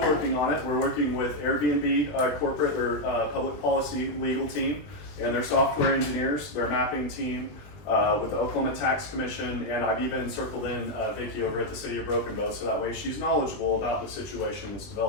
on it. We're working with Airbnb corporate, their public policy legal team, and their software engineers, their mapping team, with the Oklahoma Tax Commission, and I've even circled in Vicki over at the City of Broken Bow, so that way she's knowledgeable about the situation that's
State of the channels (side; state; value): right; late; 20 ms